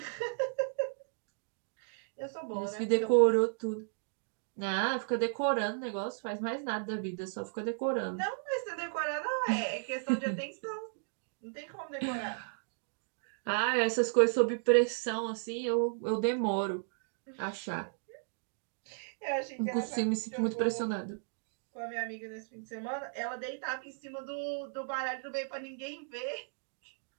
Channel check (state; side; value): silent; left; digital silence